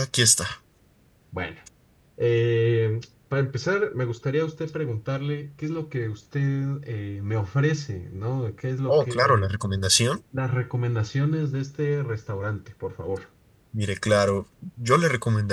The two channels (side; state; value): both; identical; correlation 1.00